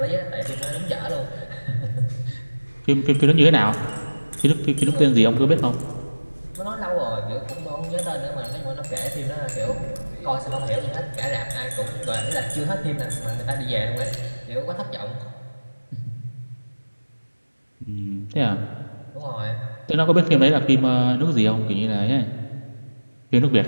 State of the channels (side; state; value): both; inverted; correlation -1.00